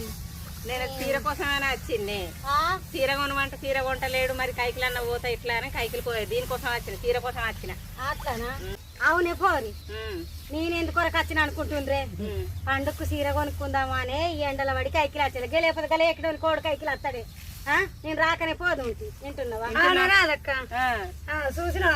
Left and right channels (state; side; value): identical; both; correlation 1.00